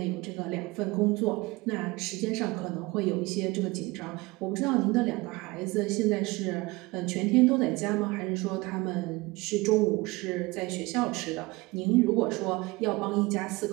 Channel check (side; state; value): left; quieter; 22.7 dB